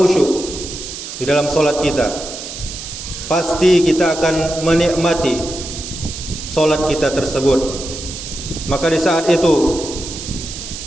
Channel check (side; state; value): right; noise; hiss, 9 dB below the sound